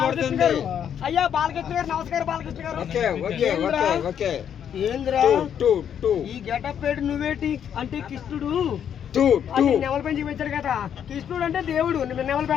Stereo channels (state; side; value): quieter; right; 8.8 dB